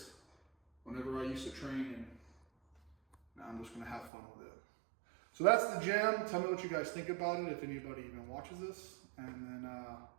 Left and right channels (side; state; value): left; drops out; at 4.1 s